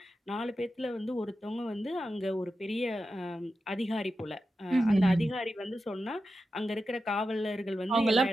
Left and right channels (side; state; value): both; normal; correlation 0.90